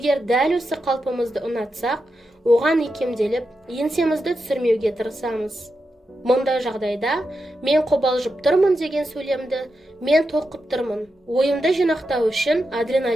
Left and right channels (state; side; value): normal; both; correlation 0.88